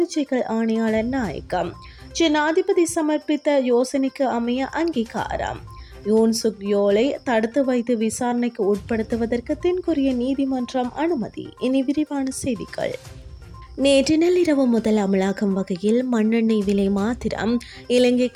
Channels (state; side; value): identical; both; correlation 1.00